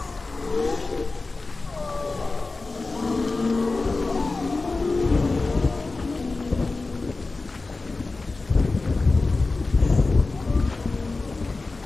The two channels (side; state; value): right; quieter; 3.6 dB